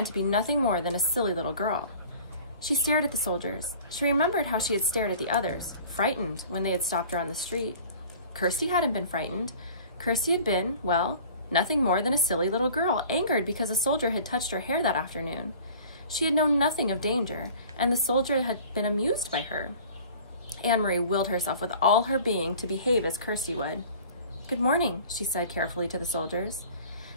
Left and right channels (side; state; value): both; inverted; correlation -0.46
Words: to be nothing more than a silly little girl. She stared at the soldiers. She remembered how she had stared at the others, frightened when they had stopped her on the street. Kirsty hadn't been frightened. Kirsty had been, well, nothing more than a silly little girl, angered because a soldier had touched her hair that afternoon. She had known nothing of danger, and the soldier had been amused by her. Anne-Marie willed herself with all her being to behave as Kirsty would. "Good morning," she said carefully to the soldiers.